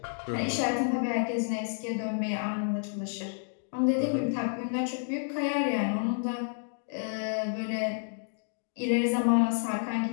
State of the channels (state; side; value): silent; right; digital silence